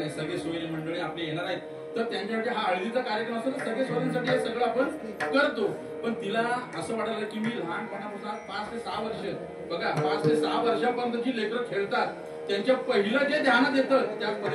सगळे सोयी मंडळी आपले येणार आहेत, तर त्यांच्यासाठी हा हळदीचा कार्यक्रम असतो, तर सगळे सोयींसाठी हे सगळं आपण करतो. पण तिला असं वाटायला की मी लहानपणापासून 5 ते 6 वर्ष, बघा 5 ते 6 वर्षापर्यंत जी लेकरं खेळतात त्यांच्या पहिलं जे ध्यानात येतं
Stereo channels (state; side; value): identical; both; correlation 1.00